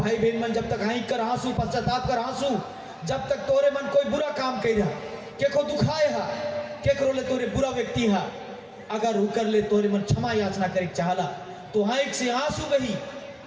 भाई बहन मन जब तक हाई कर आंसू पश्चाताप कर आंसू जब तक तोरे मन कोई बुरा काम कर रहा के को दुखाए हा के करो ले तोरे बुरा व्यक्ति हा अगर उकर ले तोरे मन क्षमा याचना करे चाहला तो हाइक से आंसू बही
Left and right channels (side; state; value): both; identical; correlation 1.00